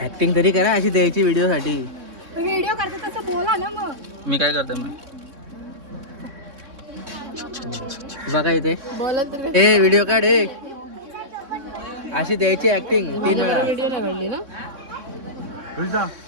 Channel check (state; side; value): late; left; 3.6 ms